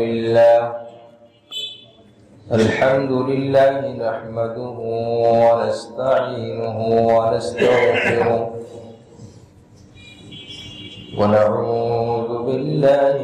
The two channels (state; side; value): identical; both; correlation 1.00